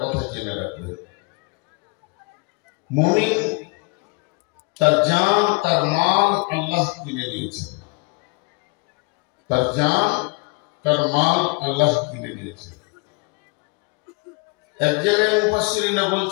কথা জেনে রাখবেন। মুমিন তার জান তার মাল আল্লাহ কিনে নিয়েছেন, তার জান তার মাল আল্লাহ কিনে নিয়েছেন। এক জায়গায় মুফাসসিরিনা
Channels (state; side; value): quieter; right; 29.3 dB